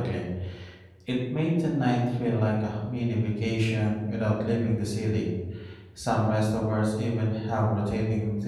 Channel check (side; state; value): both; identical; correlation 1.00